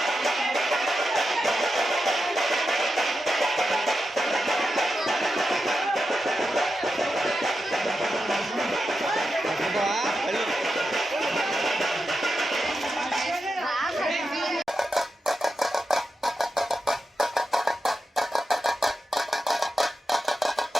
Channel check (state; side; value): normal; both; correlation 0.89